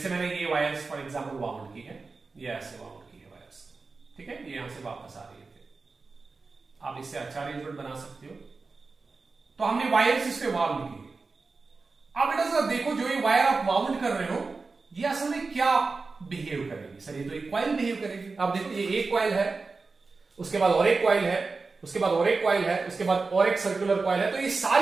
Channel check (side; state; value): left; quieter; 4.1 dB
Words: मैंने ये वायर्स फॉर एग्जांपल वाउंड की है, ये ऐसे वाउंड की है वायर्स, ठीक है, ये यहां से वापस आ रही है, आप इससे अच्छा अरेंजमेंट बना सकते हो। तो हमने वायर्स इस पे वाउंड की। अब बेटा देखो, जो ये वायर आप वाउंड कर रहे हो ये असल में क्या बिहेव करेगी, सर ये तो एक कॉइल बिहेव करेगी। आप देखो ये एक कॉइल है, उसके बाद और एक कॉइल है, उसके बाद और एक कॉइल है, उसके बाद और एक सर्कुलर कॉइल है, तो ये